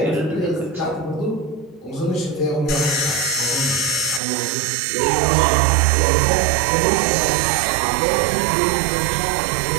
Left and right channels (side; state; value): left; drops out; at 4.2 s